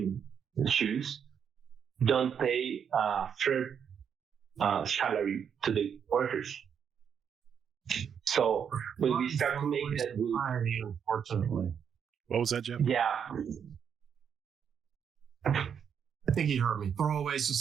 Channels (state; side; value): quieter; left; 7.6 dB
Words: shoes don't pay fair salary to the workers. So when we start to make that move, unfortunately. What was that, Jeff? yeah, I think he heard me. Throwaway